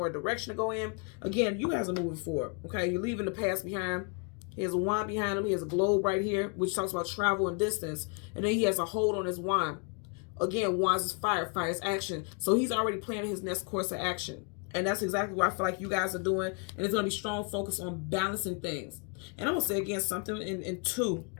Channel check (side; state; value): right; quieter; 37.2 dB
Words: a direction to go in. Again, you guys are moving forward, okay? You're leaving the past behind. He has a wand behind him. He has a globe right here, which talks about travel and distance. And then he has a hold on his wand. Again, wands is fire, fire is action. So he's already planning his next course of action. And that's exactly what I feel like you guys are doing. And it's going to be strong focus on balancing things. And I'm going to say again, something in 2